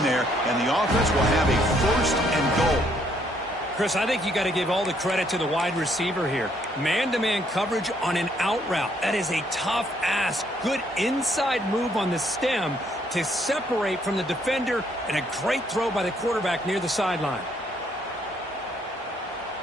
there, and the offense will have a 1st and goal. Chris, I think you got to give all the credit to the wide receiver here. Man-to-man coverage on an out route. That is a tough ask. Good inside move on the stem to separate from the defender, and a great throw by the quarterback near the sideline.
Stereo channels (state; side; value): normal; both; correlation 0.68